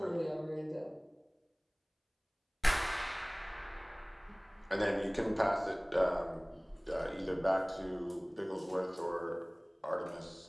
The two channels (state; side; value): identical; both; correlation 1.00